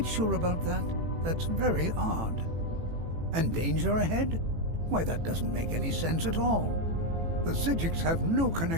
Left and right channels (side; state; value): left; late; 18 ms